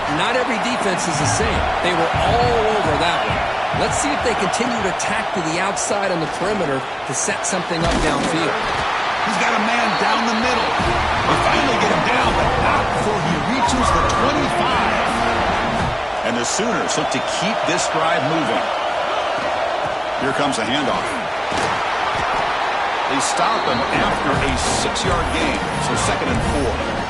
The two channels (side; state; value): both; identical; correlation 1.00